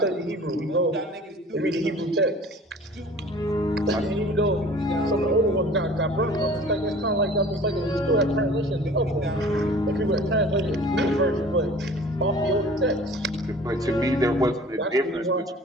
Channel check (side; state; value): both; normal; correlation 0.46